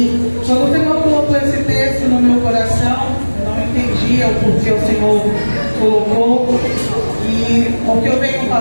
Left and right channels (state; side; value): inverted; both; correlation -1.00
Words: quando o Senhor colocou esse texto no meu coração, eu não entendia o porquê o Senhor colocou. E o que eu venho